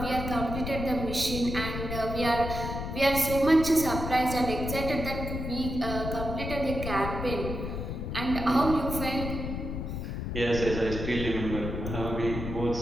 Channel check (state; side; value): noise; left; rumble, 5 dB below the sound